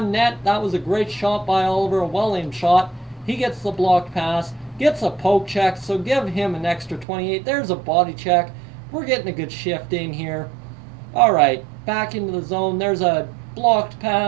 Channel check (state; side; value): drops out; left; at 7.1 s